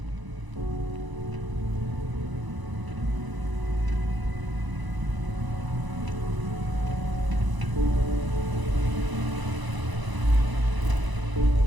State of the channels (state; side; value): late; left; 1.0 ms